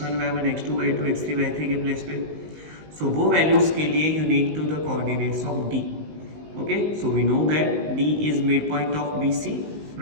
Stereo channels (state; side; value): late; left; 19 ms